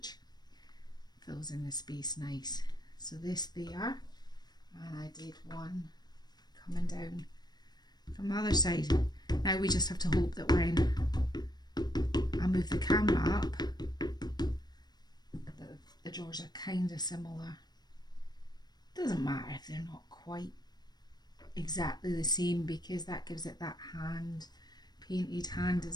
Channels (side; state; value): right; late; 0.20 ms